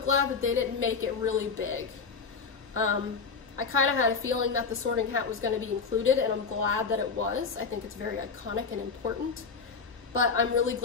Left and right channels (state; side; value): quieter; right; 5.2 dB